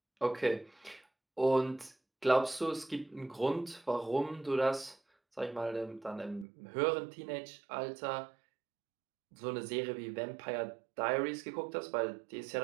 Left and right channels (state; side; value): drops out; left; at 6.5 s